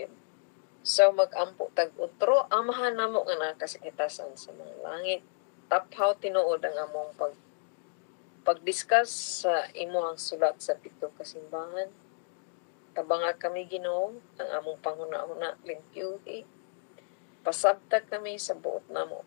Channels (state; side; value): silent; right; digital silence